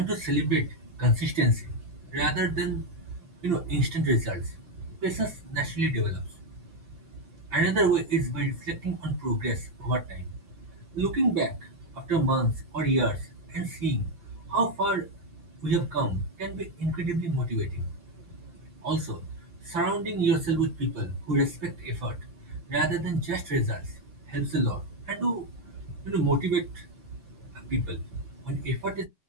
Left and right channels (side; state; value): left; late; 5.9 ms